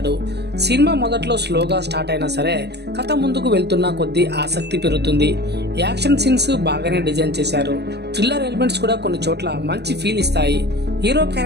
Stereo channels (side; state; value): left; late; 0.49 ms